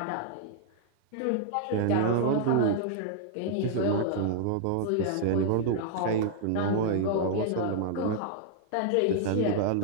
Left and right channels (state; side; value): different; both; correlation -0.01